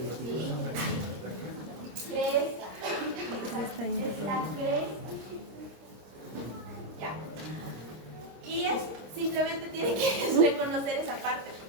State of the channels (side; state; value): left; late; 26 ms